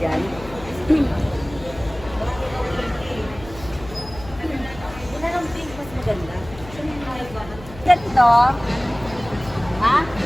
Wala ng pink, mas maganda. Ganito. Ha?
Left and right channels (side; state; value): left; noise; hum, 16 dB below the sound